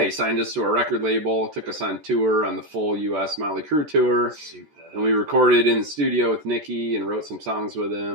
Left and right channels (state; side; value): late; left; 14 ms